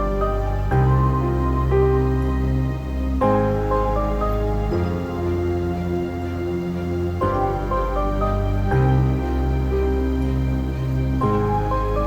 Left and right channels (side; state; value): both; identical; correlation 1.00